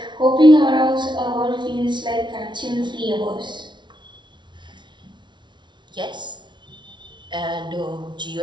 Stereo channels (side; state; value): left; late; 0.23 ms